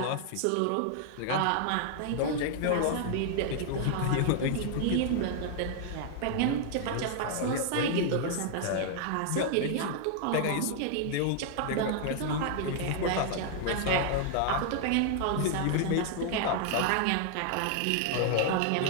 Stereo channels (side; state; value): both; different; correlation 0.00